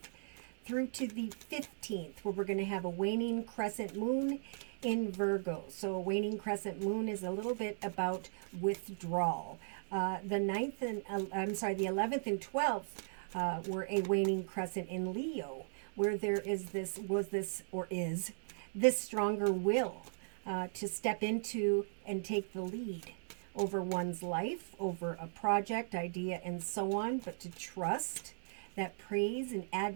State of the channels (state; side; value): silent; left; digital silence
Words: through to the 15th, where we're going to have a waning crescent moon in Virgo. So a waning crescent moon is a little bit about withdrawal. The 11th and 12th were a waning crescent in Leo, where there is this stronger will to step into and take the lead over one's life, over a project, idea, and so on, but to trust that praise and